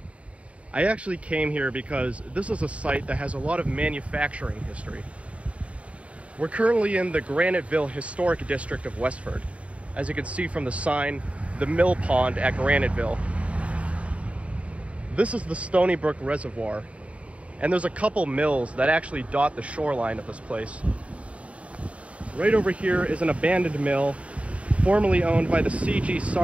I actually came here because this is a site that has a lot of manufacturing history. We're currently in the Graniteville Historic District of Westford. As you can see from the sign, the mill pond at Graniteville. This is the Stony Brook Reservoir, and there's a couple mills that actually dot the shoreline of this place. Right over here is an abandoned mill, formerly owned by the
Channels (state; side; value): late; left; 0.064 ms